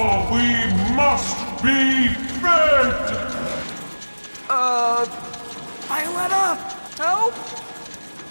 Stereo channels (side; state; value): both; inverted; correlation -1.00